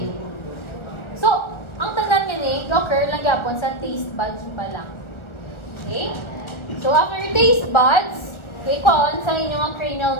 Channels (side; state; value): right; late; 1.4 ms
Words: So, ang tanan niya ni, occur lang yapon sa taste buds pa lang. Okay? So, after taste buds, okay, kuhaan sa inyong